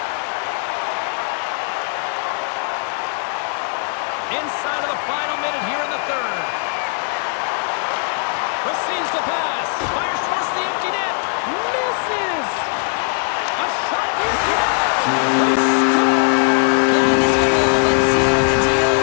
Inside of the final minute here in the third. Receives the pass. Fires towards the empty net. Misses. A shot at the empty net. They score. Yeah, this one will but seal the deal,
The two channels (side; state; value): right; silent; 56 dB below the other